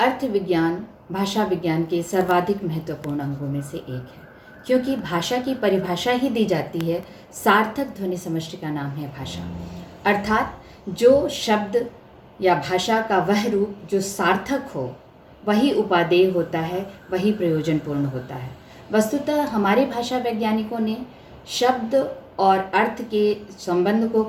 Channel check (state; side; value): identical; both; correlation 1.00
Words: अर्थ विज्ञान भाषा विज्ञान के सर्वाधिक महत्वपूर्ण अंगों में से एक है, क्योंकि भाषा की परिभाषा ही दी जाती है। सार्थक ध्वनि समष्टि का नाम है भाषा, अर्थात जो शब्द या भाषा का वह रूप जो सार्थक हो वही उपादेय होता है, वही प्रयोजनपूर्ण होता है। वस्तुतः हमारे भाषा वैज्ञानिकों ने शब्द और अर्थ के संबंध को